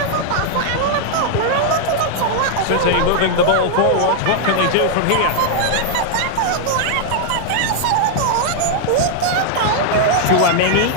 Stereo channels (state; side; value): different; both; correlation 0.00